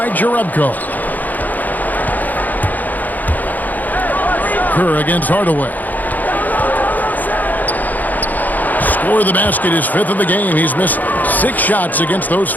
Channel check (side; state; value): right; late; 0.083 ms